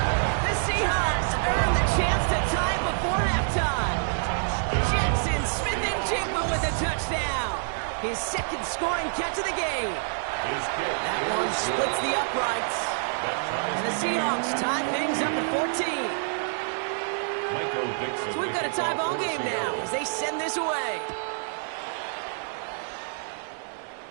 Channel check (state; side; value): silent; left; 60 dB below the other